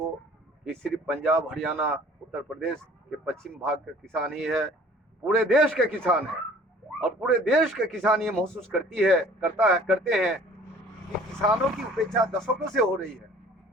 ये सिर्फ पंजाब, हरियाणा, उत्तर प्रदेश के पश्चिम भाग का किसान ही है, पूरे देश के किसान है। और पूरे देश के किसान ये महसूस करते हैं कि किसानों की उपेक्षा दशकों से हो रही है।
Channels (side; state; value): both; normal; correlation 0.51